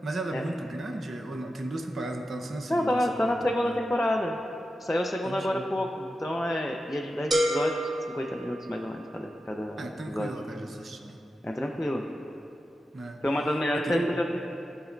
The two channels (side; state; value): both; normal; correlation 0.91